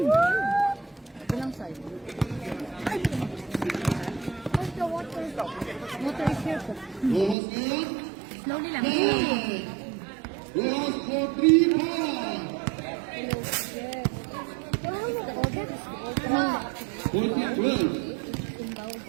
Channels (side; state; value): left; drops out; at 7.4 s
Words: Ilang side? Where's the water? Water is here po. Bukas ngayon. Slowly lang. Bukas for 3 points. 14-12.